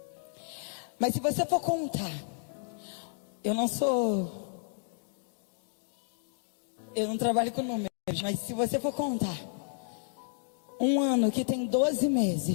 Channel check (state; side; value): silent; right; digital silence